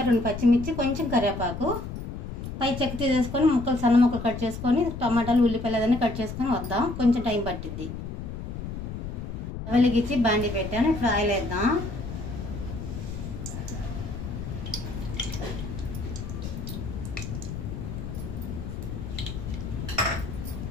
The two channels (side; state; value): left; noise; rumble, 7 dB below the sound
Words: 2 పచ్చిమిర్చి, కొంచెం కరివేపాకు, పై చెక్క తీసేసుకొని ముక్కలు సన్న ముక్కలు కట్ చేసుకొని టమాటాలు ఉల్లిపాయలు అదన్నీ కట్ చేసుకొని వద్దాం. కొంచెం టైం పట్టిద్ది. వెలిగించి బాండి పెట్టాను. ఇప్పుడు ఆయిల్ వేద్దాం.